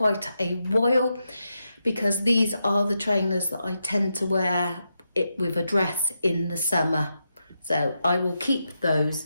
a while because these are the trainers that I tend to wear it with a dress in the summer. So I will keep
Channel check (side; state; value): both; inverted; correlation -0.86